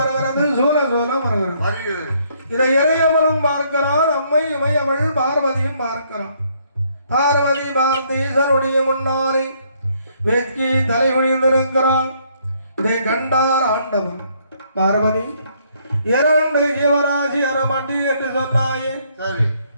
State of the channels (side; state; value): both; inverted; correlation -0.68